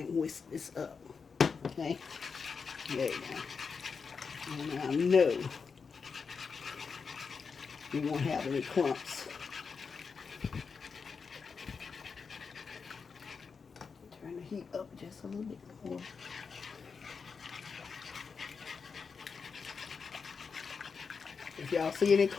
can whisk this up. Okay. There you go. And I know you won't have any clumps. Turn the heat up just a little bit more. If y'all see any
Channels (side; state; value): right; quieter; 5.4 dB